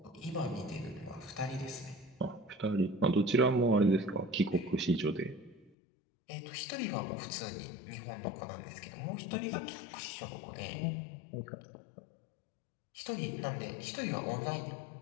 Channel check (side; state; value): right; drops out; at 5.7 s